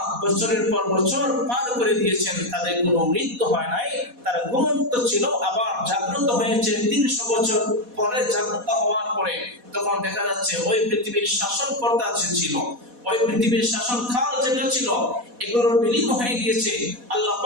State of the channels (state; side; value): late; left; 4.1 ms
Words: বছরের পর বছর পার করে দিয়েছেন, তাদের কোনো মৃত্যু হয় নাই, তারা ঘুমন্ত ছিল, আবার জাগ্রত হয়েছে 300 বছর পরে। জাগ্রত হওয়ার পরে তখন দেখা যাচ্ছে ওই পৃথিবীর শাসনকর্তা যে ছিল, ওই পৃথিবীর শাসন কাল যেটা ছিল, এগুলোর বিলীন হয়ে গিয়েছে। আল্লাহ